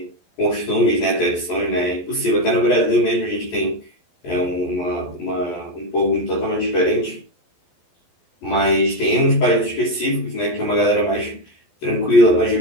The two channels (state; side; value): late; right; 12 ms